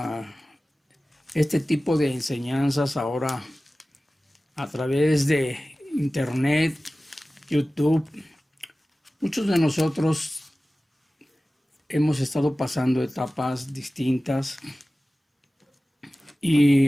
este tipo de enseñanzas ahora a través de internet, YouTube. Muchos de nosotros hemos estado pasando etapas distintas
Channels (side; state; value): both; normal; correlation 0.96